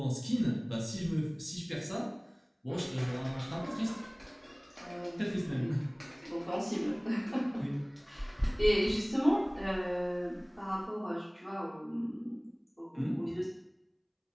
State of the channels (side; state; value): both; identical; correlation 1.00